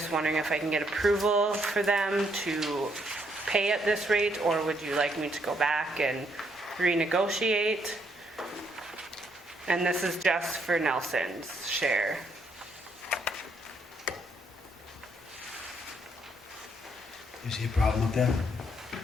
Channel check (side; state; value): both; normal; correlation 0.73